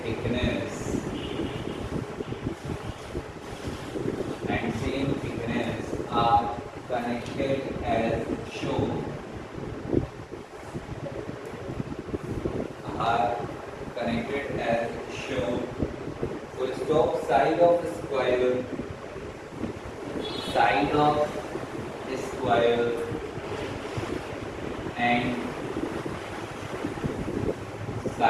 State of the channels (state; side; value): identical; both; correlation 1.00